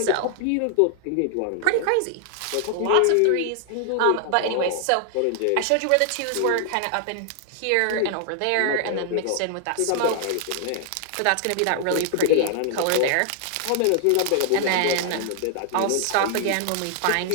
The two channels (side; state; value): both; different; correlation -0.01